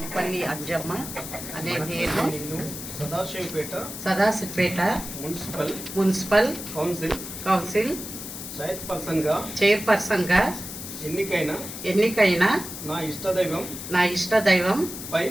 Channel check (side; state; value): left; noise; hiss, 9 dB below the sound